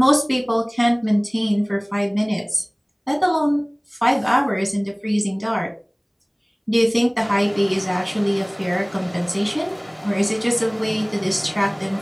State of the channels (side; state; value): both; identical; correlation 1.00